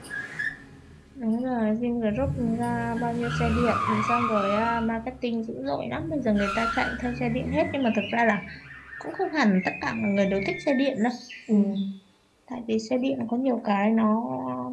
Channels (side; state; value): both; identical; correlation 1.00